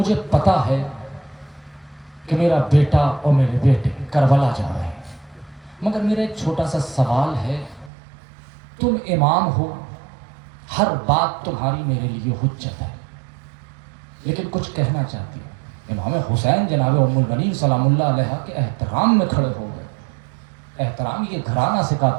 پتا ہے کہ میرا بیٹا اور میرے بیٹے کربلا جا رہے ہیں، مگر میرا ایک چھوٹا سا سوال ہے، تم امام ہو، ہر بات تمہاری میرے لیے حجت ہے، لیکن کچھ کہنا چاہتی ہوں۔ امام حسین جناب ام البنین سلام اللہ علیہ کے احترام میں کھڑے ہو گئے۔ احترام یہ گھرانہ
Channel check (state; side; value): drops out; left; at 7.9 s